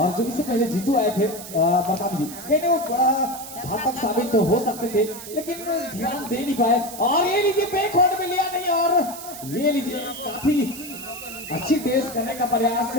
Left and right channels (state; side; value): noise; right; hiss, 12 dB below the sound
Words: जो इससे पहले जीतू आए थे मरकाम जी, कहने वो बड़ा घातक साबित तो हो सकते थे लेकिन ध्यान दे नहीं पाए और ये लीजिए बैक होल्ड में लिया नहीं और ये लीजिए काफी अच्छी डेस करने का प्रयास